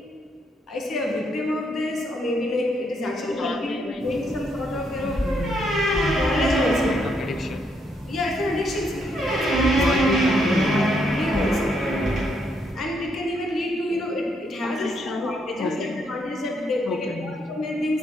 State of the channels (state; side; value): normal; both; correlation 0.75